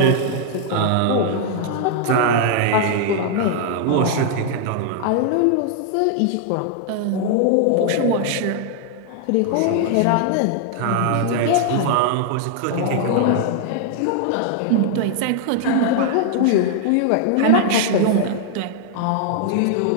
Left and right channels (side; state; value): both; different; correlation 0.00